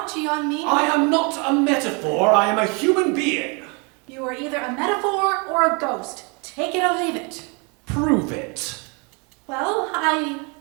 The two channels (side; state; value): left; quieter; 32.6 dB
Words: on me. I am not a metaphor. I am a human being. You are either a metaphor or a ghost. Take it or leave it. Prove it. Well,